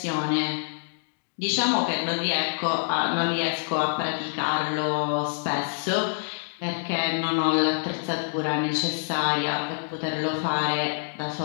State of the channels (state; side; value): silent; right; digital silence